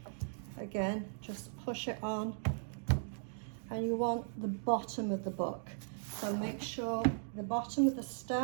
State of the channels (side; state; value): left; silent; digital silence